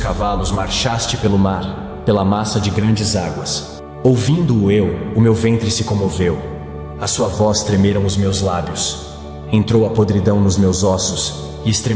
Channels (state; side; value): identical; both; correlation 1.00